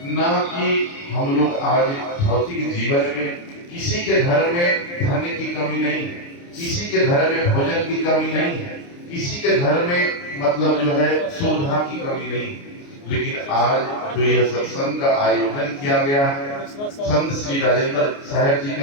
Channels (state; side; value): late; right; 29 ms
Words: ना कि हम लोग आज भौतिक जीवन में किसी के घर में धन की कमी नहीं है, किसी के घर में भोजन की कमी नहीं है, किसी के घर में मतलब जो है सुविधा की कमी नहीं है। लेकिन आज जो यह सत्संग का आयोजन किया गया है संत श्री राजेंद्र साहब जी